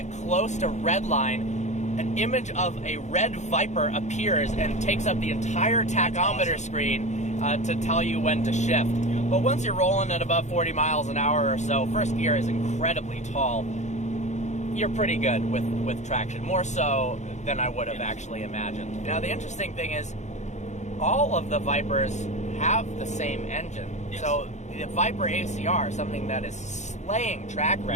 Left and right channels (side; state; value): right; late; 0.34 ms